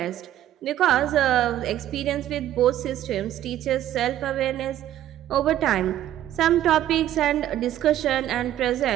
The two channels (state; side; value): quieter; left; 12.5 dB